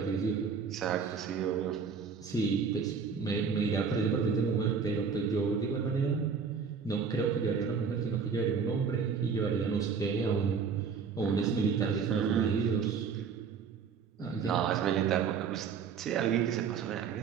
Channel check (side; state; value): left; quieter; 6.0 dB